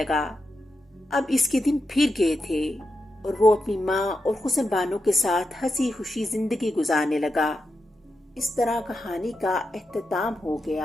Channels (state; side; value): normal; both; correlation 0.87